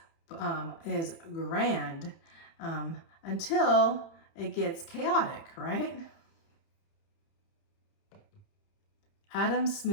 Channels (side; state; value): right; late; 30 ms